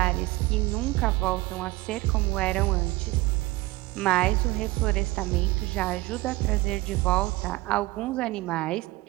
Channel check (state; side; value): quieter; left; 20.2 dB